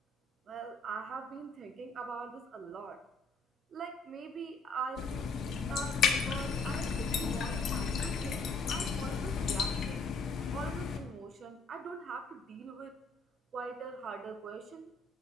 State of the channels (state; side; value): quieter; right; 3.6 dB